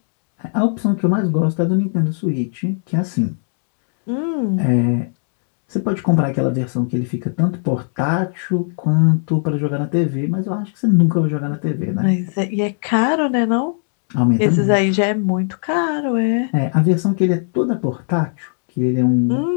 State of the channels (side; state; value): right; silent; 65 dB below the other